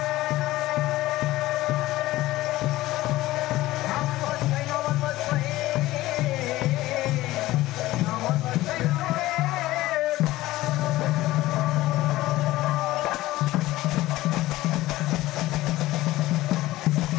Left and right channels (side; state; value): right; quieter; 17.1 dB